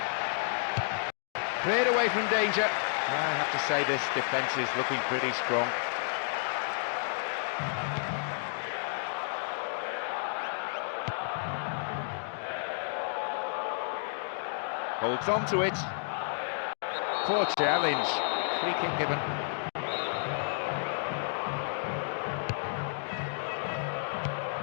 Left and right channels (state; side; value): silent; right; digital silence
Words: Cleared away from danger. I have to say this defence is looking pretty strong. Holds on to it. Poor challenge. Free kick given.